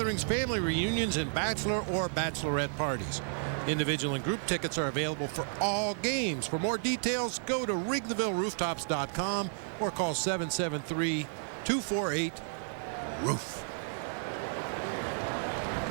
family reunions, and bachelor or bachelorette parties. Individual and group tickets are available for all games. For more details, go to WrigleyvilleRooftops.com or call 773-248-ROOF.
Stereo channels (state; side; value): silent; left; digital silence